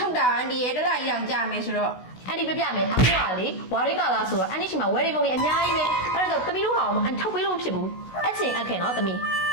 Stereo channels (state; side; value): late; right; 16 ms